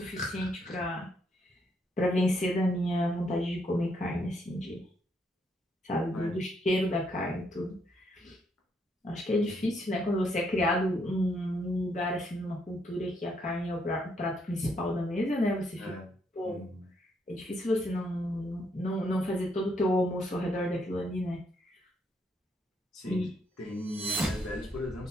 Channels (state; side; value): normal; both; correlation 0.74